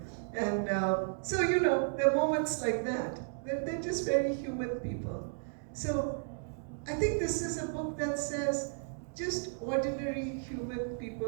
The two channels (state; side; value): silent; left; digital silence